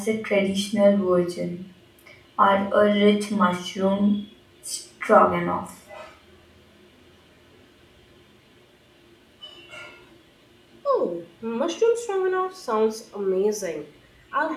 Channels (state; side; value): identical; both; correlation 1.00